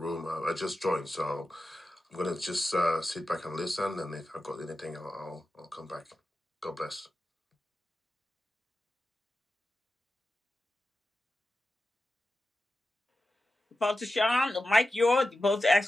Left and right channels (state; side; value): normal; both; correlation 0.92